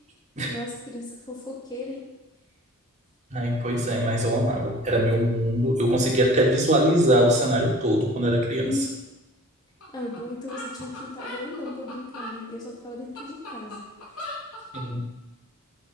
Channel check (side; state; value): both; normal; correlation 0.47